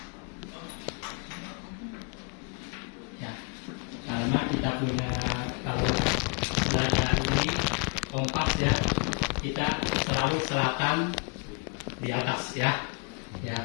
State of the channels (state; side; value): quieter; right; 36.0 dB